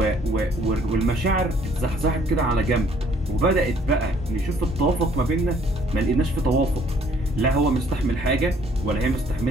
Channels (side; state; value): both; normal; correlation 0.61